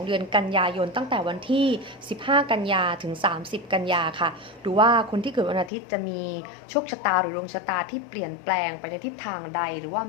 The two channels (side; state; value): right; drops out; at 5.7 s